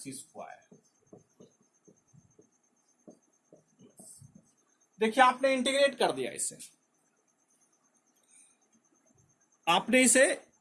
स्क्वायर। देखिए आपने इंटीग्रेट कर दिया, इसे आपने इसे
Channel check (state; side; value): identical; both; correlation 1.00